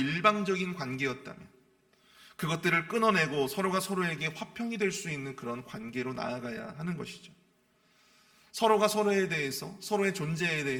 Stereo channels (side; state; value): both; identical; correlation 1.00